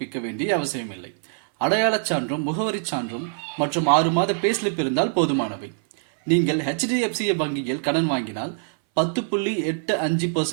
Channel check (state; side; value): silent; left; 59 dB below the other